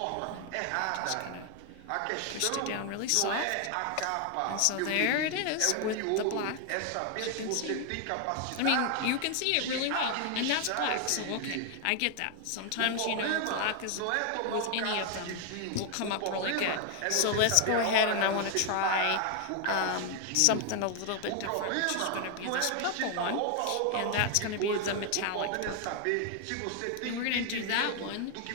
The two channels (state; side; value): different; both; correlation 0.00